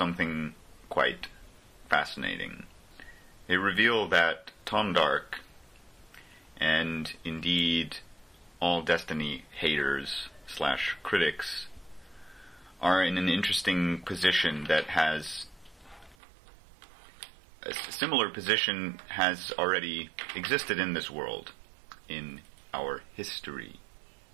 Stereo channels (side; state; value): left; drops out; at 16.2 s